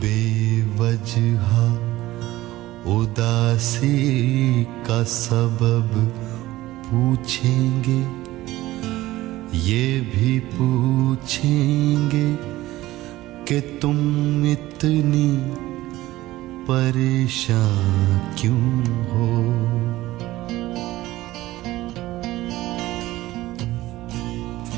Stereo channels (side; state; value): left; quieter; 16.9 dB